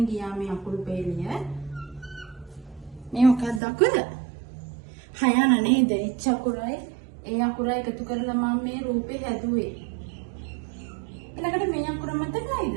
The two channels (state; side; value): drops out; left; at 3.6 s